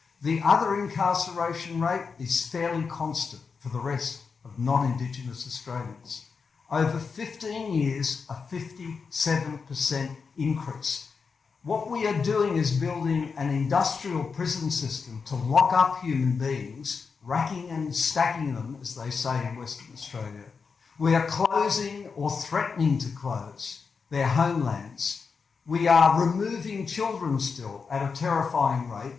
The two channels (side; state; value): right; quieter; 5.3 dB